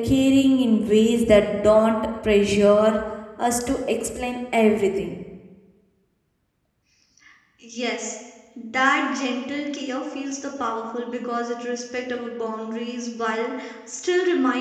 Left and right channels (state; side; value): identical; both; correlation 1.00